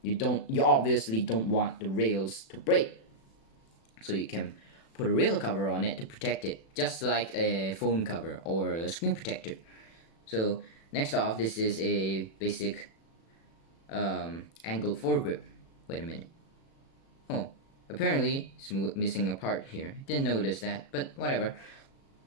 you obviously don't want the rails to break, so you can put a rail cover on it to protect it, just like a phone cover or a screen protector. So next off, this is a basic angled foregrip. Wait a minute. Oh, apparently it's missing a part here. Didn't notice that, but whatever.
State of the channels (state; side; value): late; right; 36 ms